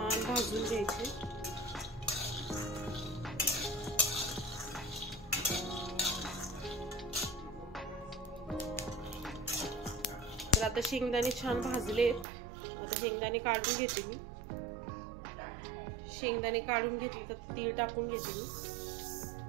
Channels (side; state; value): left; drops out; at 12.2 s